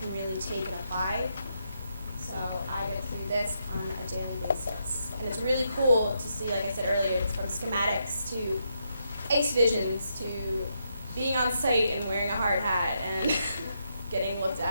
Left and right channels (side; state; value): both; inverted; correlation -0.80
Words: really take and apply. So I get to do this on a daily basis. And it's really cool to see, like I said earlier, it's from schematics to ACE visions to being on site and wearing a hard hat and getting looked